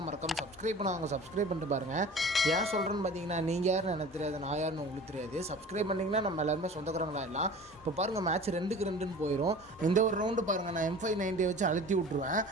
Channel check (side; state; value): both; normal; correlation 0.41